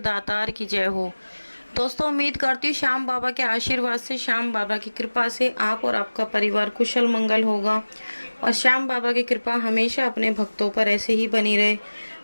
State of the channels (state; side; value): inverted; both; correlation -1.00